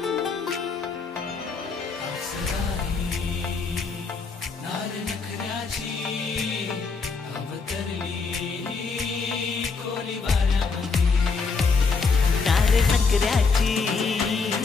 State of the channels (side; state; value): right; quieter; 4.7 dB